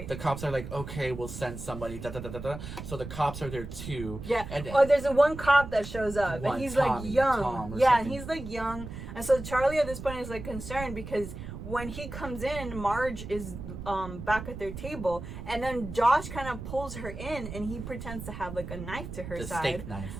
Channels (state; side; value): noise; right; rumble, 9 dB below the sound